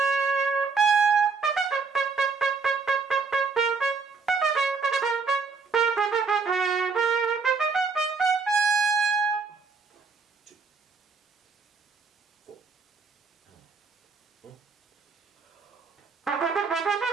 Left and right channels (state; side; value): quieter; left; 4.9 dB